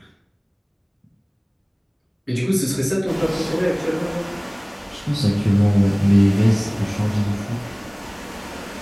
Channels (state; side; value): identical; both; correlation 1.00